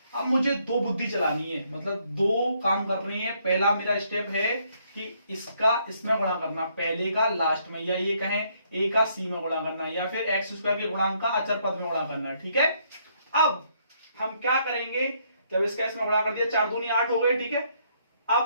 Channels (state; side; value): inverted; both; correlation -0.70